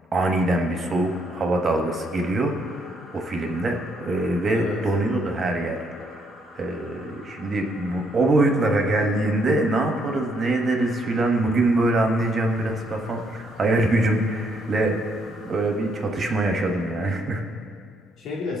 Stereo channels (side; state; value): both; normal; correlation 0.72